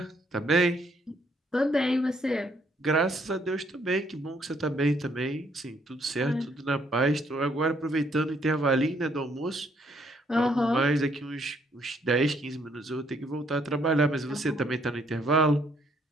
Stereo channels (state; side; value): normal; both; correlation 0.68